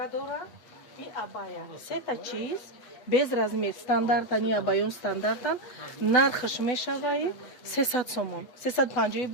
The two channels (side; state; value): right; late; 8.4 ms